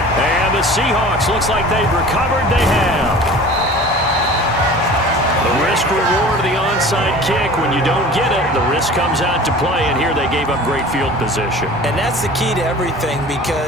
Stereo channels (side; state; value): both; normal; correlation 0.42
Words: And the Seahawks looks like they've recovered. They have. The risk reward of the onside kick. When you don't get it, the risk comes out to play. And here they gave up great field position. And that's the key to everything